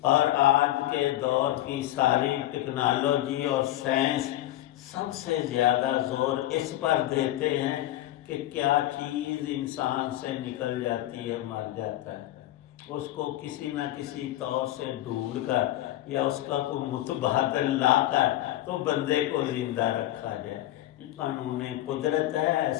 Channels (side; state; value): right; quieter; 14.8 dB